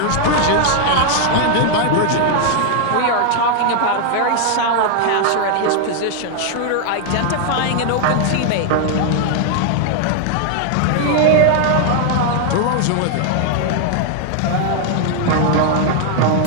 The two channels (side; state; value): both; different; correlation 0.00